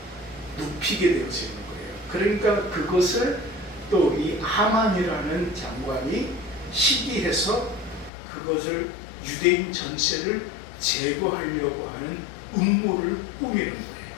눕히게 되어지는 거예요. 그러니까 그것을 또 이 하만이라는 장관이 시기해서 그것을 유대인 전체를 제거하려고 하는 음모를 꾸미는 거예요.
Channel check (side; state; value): right; drops out; at 8.1 s